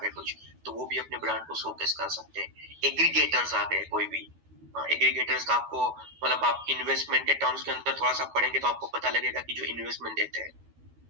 है कुछ, तो वो भी अपने ब्रांड को शोकेस कर सकते हैं। एग्रीगेटर्स आ गए, कोई भी एग्रीगेटर्स का आपको मतलब आप इन्वेस्टमेंट के टर्म्स के अंदर थोड़ा सा पढ़ेंगे तो आपको पता लगेगा कि जो इन्वेस्टमेंट देते हैं,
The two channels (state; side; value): late; left; 13 ms